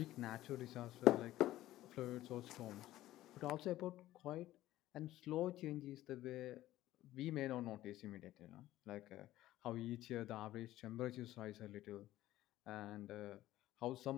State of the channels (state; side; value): quieter; right; 15.1 dB